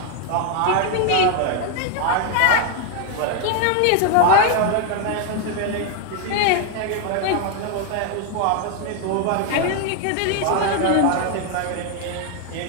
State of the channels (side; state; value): both; different; correlation 0.01